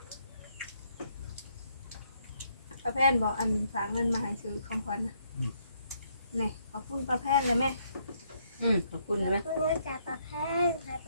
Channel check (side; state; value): both; inverted; correlation -0.72